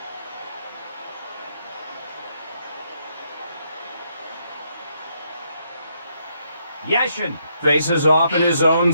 Yashin faces off in his own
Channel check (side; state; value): both; inverted; correlation -0.75